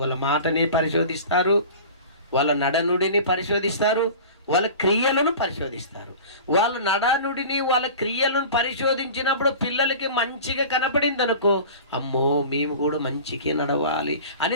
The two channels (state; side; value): inverted; both; correlation -0.38